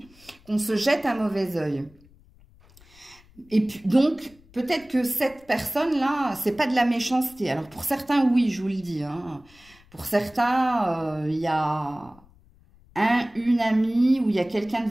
qu'on se jette un mauvais œil. Et puis, donc... peut-être que cette personne-là, c'est pas de la méchanceté. Alors, pour certains, oui, je vous le dis. Hein. Pour certains, il y a une amie ou il y a quelqu'un de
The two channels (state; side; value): noise; left; rumble, 27 dB below the sound